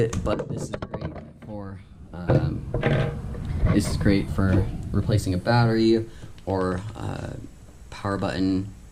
but this is great for replacing a battery or power button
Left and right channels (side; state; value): both; identical; correlation 1.00